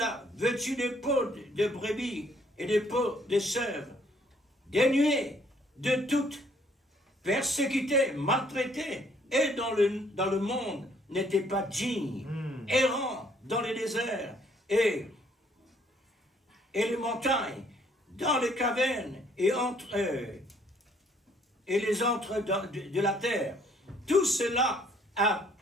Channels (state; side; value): normal; both; correlation 0.64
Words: vêtus de peaux de brebis et de peaux de chèvres, dénués de toute persécutés, maltraités, et dans le monde n'étaient pas dignes, errants dans les déserts et les montagnes, dans les cavernes et les entres de la terre. Tout cela a